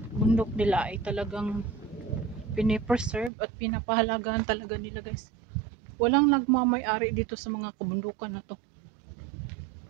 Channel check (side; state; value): left; drops out; at 3.3 s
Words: bundok nila ay talagang pinipreserve at pinapahalagahan talaga nila guys. Walang nagmamay-ari dito sa mga kabundukan na to.